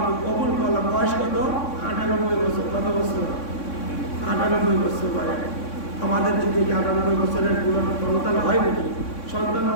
কবুল করলাম। বয়স কত? 98 বছর। কত বছর? 98 বছর পরে। আমাদের যদি 98 বছরের পুরো সন্তান হয় নাকি? সন্তান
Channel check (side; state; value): right; late; 3.6 ms